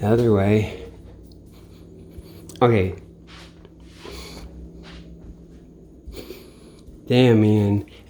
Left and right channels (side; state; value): both; identical; correlation 1.00